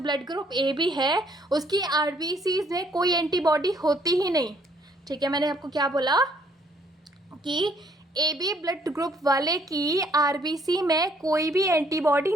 ग्रुप ए बी है, उसकी आरबीसीज में कोई एंटीबॉडी होती ही नहीं। ठीक है। मैंने आपको क्या बोला कि ए बी ब्लड ग्रुप वाले की आरबीसी में कोई भी एंटीबॉडी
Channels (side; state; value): both; normal; correlation 0.65